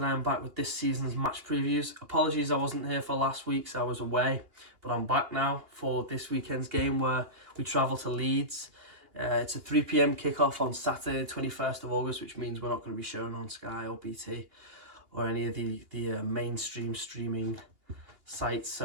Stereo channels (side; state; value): left; late; 2.8 ms